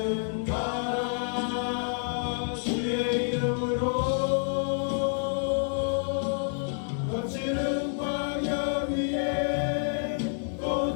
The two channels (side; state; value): right; silent; digital silence